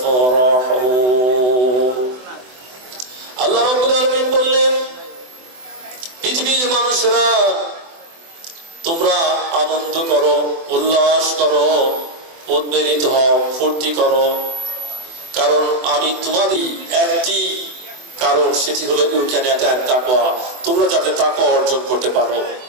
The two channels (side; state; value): left; late; 24 ms